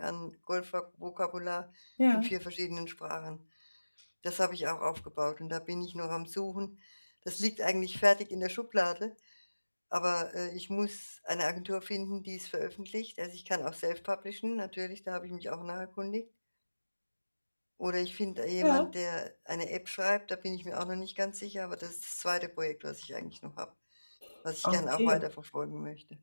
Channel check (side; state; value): both; inverted; correlation -1.00